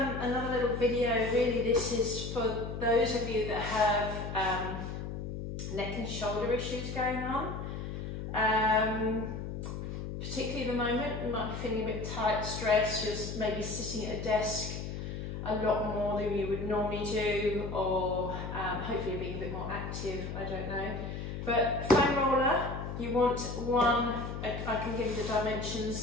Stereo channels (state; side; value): noise; left; hum, 6 dB below the sound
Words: another little video. Really, this is for those of you that have neck and shoulder issues going on. Particularly at the moment, you might be feeling a bit tight, stressed, just maybe sitting at a desk a lot more than you would normally do, or hopefully being a bit more active, I don't know. But foam roller, you want one, I can give you the